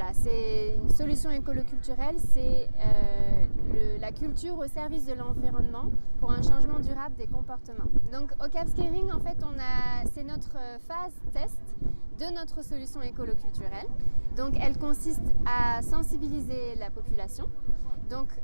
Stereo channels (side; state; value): both; inverted; correlation -1.00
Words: c'est une solution écolo-culturelle, c'est la culture au service de l'environnement pour un changement durable des comportements. Donc au Cap Skirring, en fait, c'est notre phase test de notre solution écolo-culturelle. Donc elle consiste à sensibiliser la population. Donc